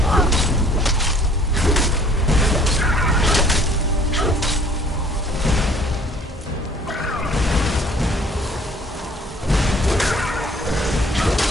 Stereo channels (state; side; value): normal; both; correlation 0.56